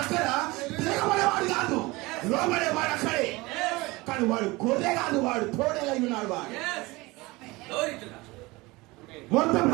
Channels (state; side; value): quieter; left; 22.5 dB